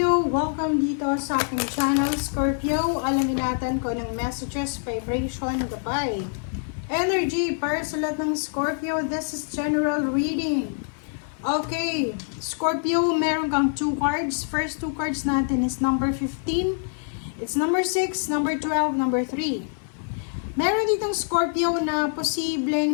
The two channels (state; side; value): silent; right; 57 dB below the other